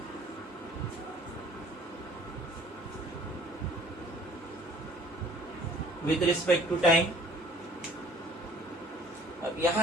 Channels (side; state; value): both; normal; correlation 0.54